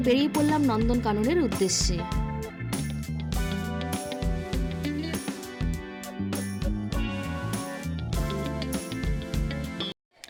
বেরিয়ে পড়লাম নন্দনকাননের উদ্দেশ্যে।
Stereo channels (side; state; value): both; identical; correlation 1.00